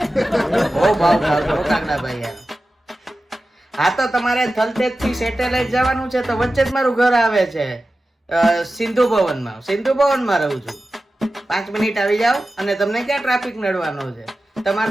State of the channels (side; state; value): both; normal; correlation 0.94